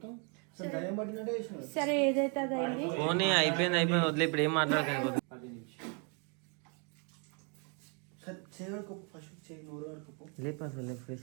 అసలు దయ్యం పట్టినట్టే చేసినావు. సరే ఏదైతే అది అయింది. పోనీ అయిపోయింది వదిలే, ఇప్పుడు ఏం మాట్లాడకండి. సరే చేయడుకోపు ఫస్ట్ చేయి, నోరు ఆడుకోపు, లేపు అసలు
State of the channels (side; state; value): left; quieter; 36.5 dB